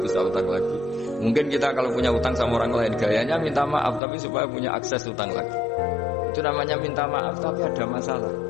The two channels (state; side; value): drops out; right; at 4.0 s